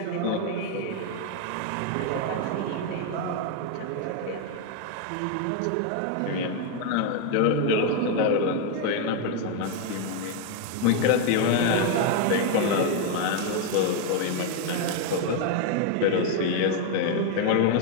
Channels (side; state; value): both; different; correlation 0.01